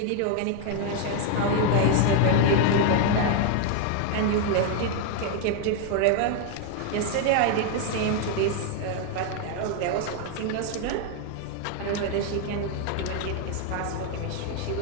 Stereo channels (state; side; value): different; both; correlation 0.00